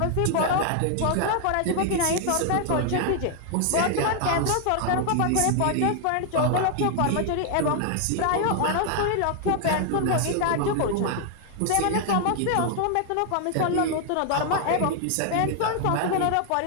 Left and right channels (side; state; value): both; different; correlation 0.00